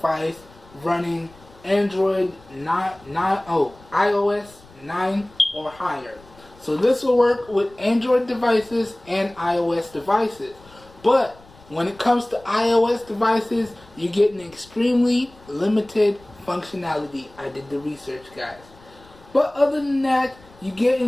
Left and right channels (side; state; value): left; noise; rumble, 25 dB below the sound